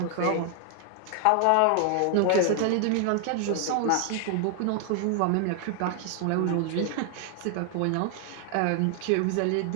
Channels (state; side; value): different; both; correlation 0.00